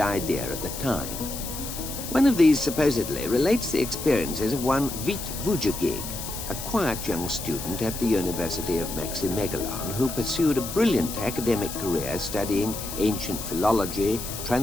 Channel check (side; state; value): left; noise; hiss, 8 dB below the sound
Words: idea at the time. One of these supposedly relates the experiences of one Vít Vujagig, a quiet young student at the University of Maximegalon who pursued a brilliant academic career studying ancient philology,